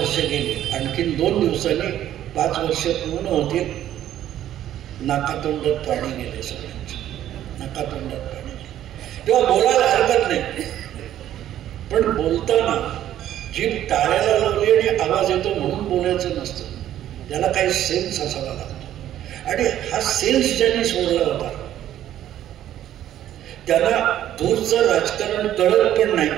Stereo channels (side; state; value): left; quieter; 11.9 dB